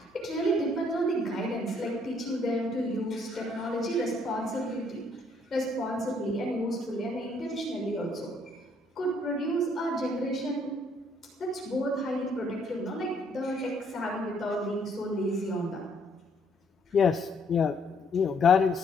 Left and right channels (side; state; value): both; normal; correlation 0.67